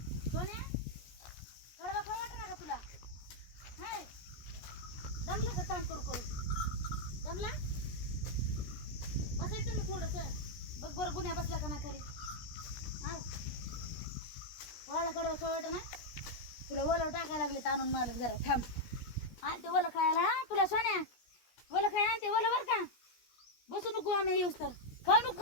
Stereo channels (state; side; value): late; right; 17 ms